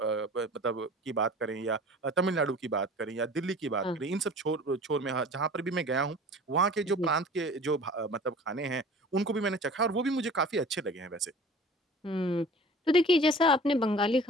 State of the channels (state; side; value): normal; both; correlation 0.44